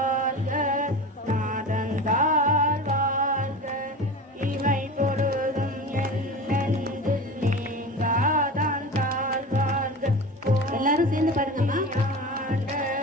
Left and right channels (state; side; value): normal; both; correlation 0.31